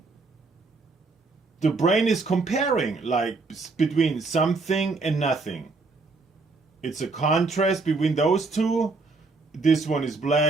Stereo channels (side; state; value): left; quieter; 3.8 dB